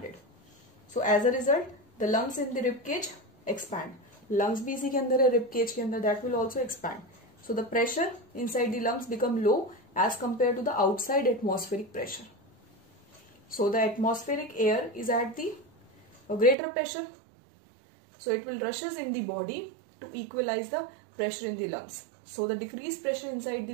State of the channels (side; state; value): left; drops out; at 16.6 s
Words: So as a result, the lungs in the rib cage expand. Lungs भी इसी के अंदर है, rib cage के अंदर, that will also expand. So the pressure inside the lungs become low as compared to the outside atmospheric pressure. So the atmospheric air is at the greater pressure. So it will rushes in the body to equalize the pressure in the lungs. So the decreased pressure inside the